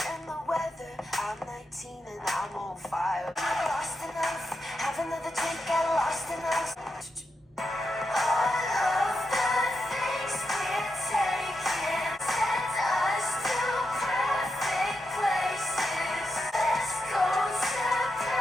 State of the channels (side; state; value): both; normal; correlation 0.85